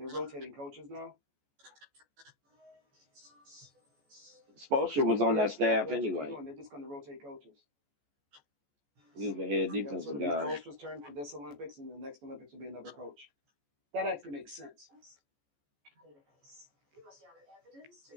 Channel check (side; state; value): left; late; 14 ms